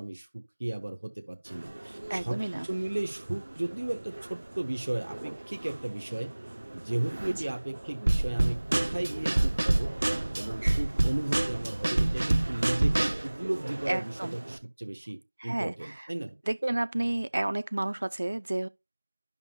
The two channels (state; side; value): inverted; both; correlation -1.00